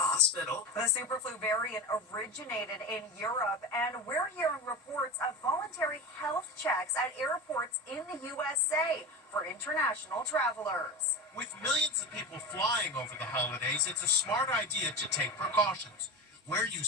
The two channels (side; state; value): both; normal; correlation 0.26